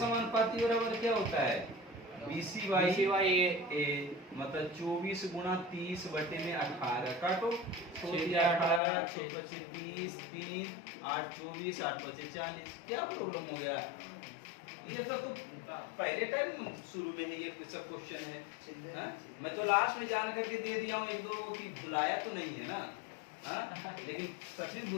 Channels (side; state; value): right; drops out; at 8.8 s